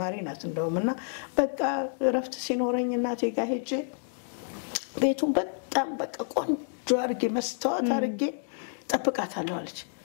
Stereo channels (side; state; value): right; silent; digital silence